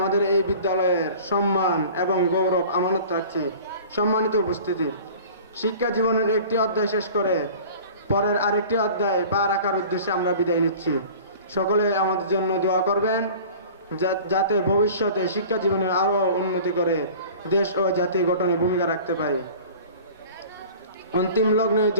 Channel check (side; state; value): both; inverted; correlation -0.43